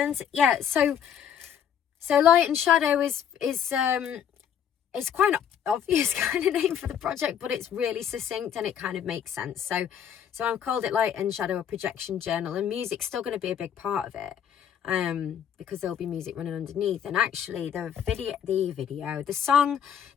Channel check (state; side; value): quieter; right; 8.8 dB